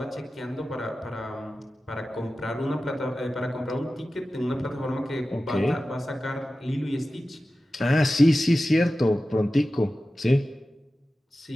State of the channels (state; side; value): normal; both; correlation 0.94